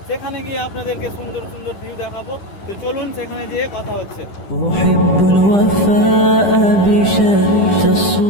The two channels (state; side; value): late; right; 10 ms